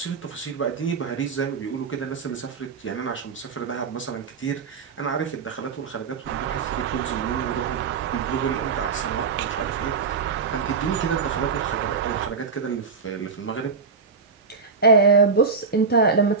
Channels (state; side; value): quieter; left; 5.2 dB